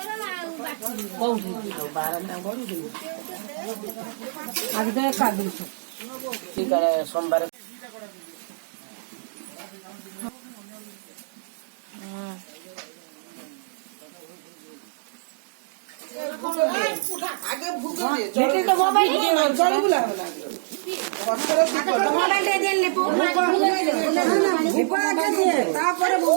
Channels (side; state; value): left; silent; digital silence